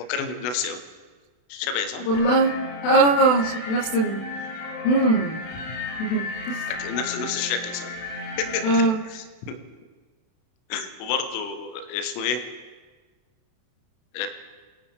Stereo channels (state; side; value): late; right; 32 ms